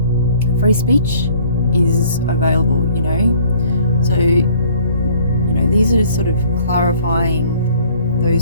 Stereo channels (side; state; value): both; inverted; correlation -0.56